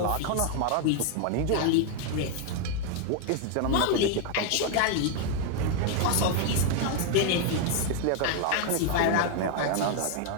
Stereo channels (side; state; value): both; different; correlation 0.01